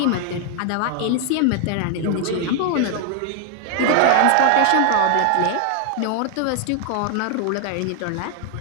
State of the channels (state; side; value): different; both; correlation 0.00